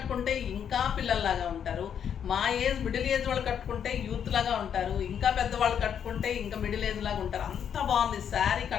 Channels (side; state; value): right; quieter; 8.3 dB